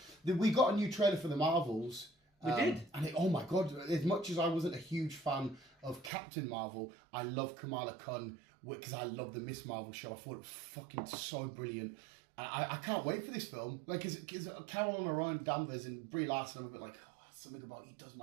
We got a new trailer for the Marvels. We did. And oh my god, as much as I wasn't a huge fan of Captain Marvel, I love Kamala Khan because I love the Miss Marvel show. I thought it was fucking so brilliant. I can't wait for this film. Like, because Carol and Orion Danvers and Brie Larson, I'm a bit like, oh, something about he does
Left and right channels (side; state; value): left; drops out; at 6.1 s